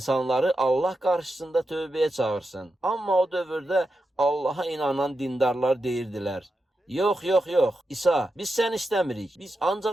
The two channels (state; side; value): normal; both; correlation 0.88